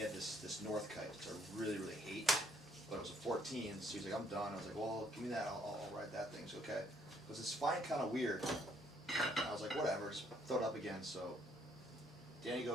had this North kite, which I really, really hate. But it was a 14, so he's like, I'm done. I was like, well, give me that, I'll ride that thing. He's okay. Because it's flying kind of weird. And I was like, whatever, just throw it up again. So Danny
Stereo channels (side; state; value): both; normal; correlation 0.67